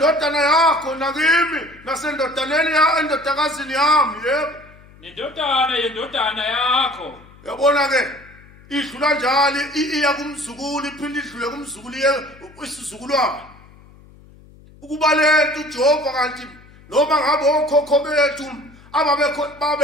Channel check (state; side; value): noise; left; hum, 24 dB below the sound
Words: yakho nakimi nasendodaneni endodakazini yami yebo. Nendodana yendodana yakho. Yabona ke idlula njalo iya kumzukulu iphinde idlule kumzukulu isizukulwana. Ukuba lento uJehova kanti noma ngabe okhokho bethu